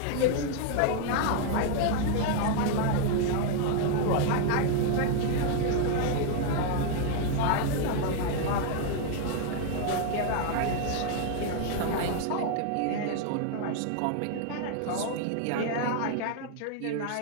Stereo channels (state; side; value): different; both; correlation 0.00